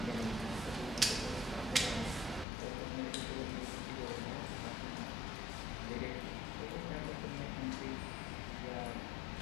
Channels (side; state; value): right; drops out; at 2.5 s